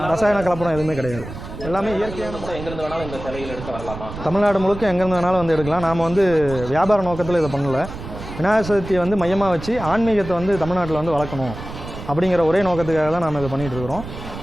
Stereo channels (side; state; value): right; noise; rumble, 11 dB below the sound